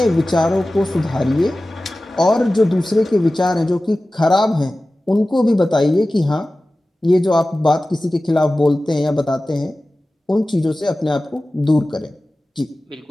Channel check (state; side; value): normal; both; correlation 0.96